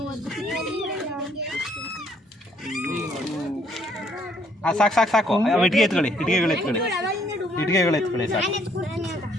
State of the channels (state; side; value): normal; both; correlation 0.66